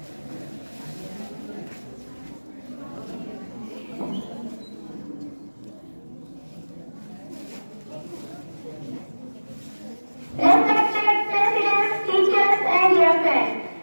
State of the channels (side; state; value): both; inverted; correlation -1.00